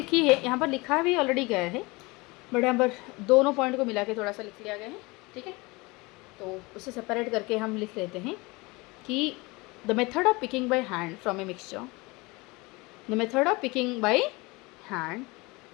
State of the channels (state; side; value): quieter; right; 24.5 dB